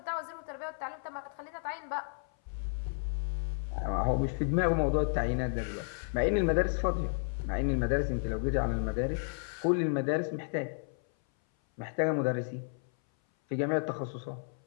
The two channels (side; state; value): right; silent; 56 dB below the other